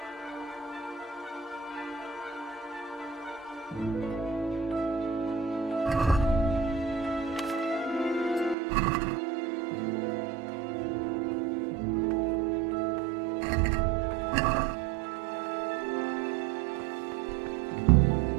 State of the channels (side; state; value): left; drops out; at 8.6 s